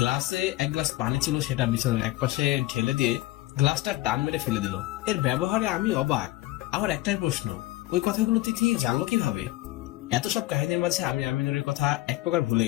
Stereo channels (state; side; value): quieter; right; 17.7 dB